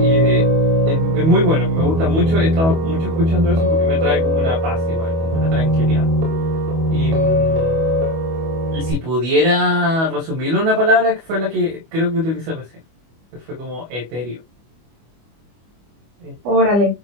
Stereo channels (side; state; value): left; late; 25 ms